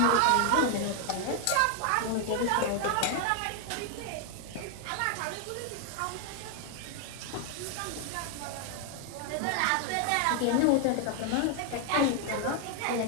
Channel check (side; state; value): both; different; correlation 0.00